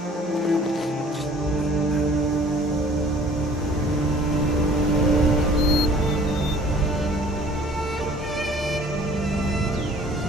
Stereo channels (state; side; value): normal; both; correlation 0.52